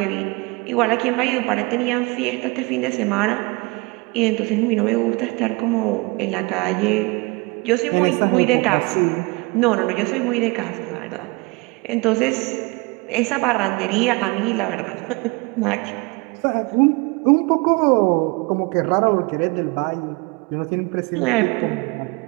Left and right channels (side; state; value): left; quieter; 27.0 dB